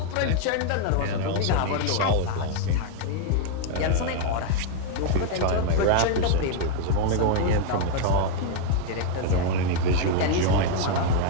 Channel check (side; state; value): both; different; correlation 0.00